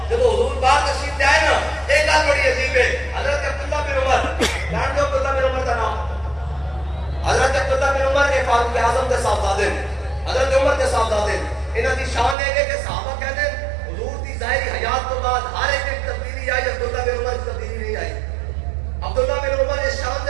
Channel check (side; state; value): left; drops out; at 12.4 s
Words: جب حضور باہر تشریف لے آئے نا ایک گل بڑی عجیب ہے، حضرت عبداللہ بن عمر، جان دو عبداللہ بن عمر کا نام، حضرت عبداللہ بن عمر کے فاروق اعظم کے صاحبزادے، حضرت عمر کے صاحبزادے، انہاں دی شان ہے کہ صحابہ کہتے ہیں حضور دی ظاہری حیات تو بعد ہر ایک تبدیلی آئی، عبداللہ بن عمر کی تبدیلی نہیں آئی۔ عبداللہ بن عمر اس شان